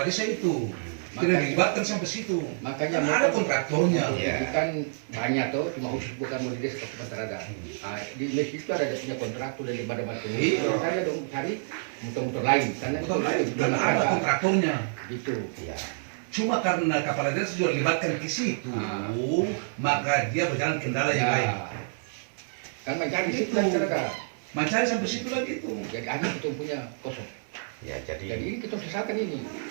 desa itu. Tidak dilibatkan sampai situ. Makanya Kan ada kontraktornya. Iya. itu kan banyak tuh, cuma khusus bukan mau di desa kabupaten ada. Ah, di Mesir itu ada dia punya kontraktor dari badan Iya. Kalau saya dong cari motor-motor lain karena Betul, dan ada kontraktornya. gitu. Ya. Cuma karena kepala desa juga dilibatkan ke situ, maka dia berjalan kendala yang lain. Kan mencari Itu. situ masyarakat. Mencari sampai situ lagi itu. Jadi akhirnya kita punya kosong. Ya Jadi jadi ini kita sesalkan ini.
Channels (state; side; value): silent; left; digital silence